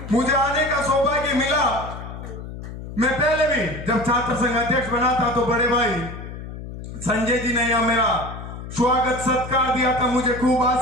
मुझे आने का सौभाग्य मिला। मैं पहले भी जब छात्र संघ अध्यक्ष बना था तो बड़े भाई संजय जी ने यह मेरा स्वागत सत्कार दिया था, मुझे खूब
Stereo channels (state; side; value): noise; left; hum, 10 dB below the sound